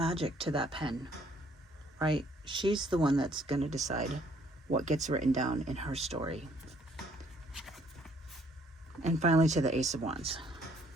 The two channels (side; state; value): both; normal; correlation 0.63